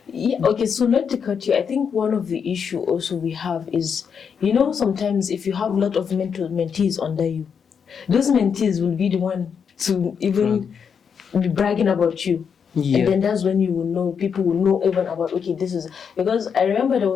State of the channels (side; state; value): right; quieter; 6.8 dB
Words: okay, so not to cut you, I think one of the issue also we have is, sometimes if you have a lot of mentees under you, those mentees will be the one to even be bragging about you. And then that's when you will know, people will know even about, okay, this is, because I remember there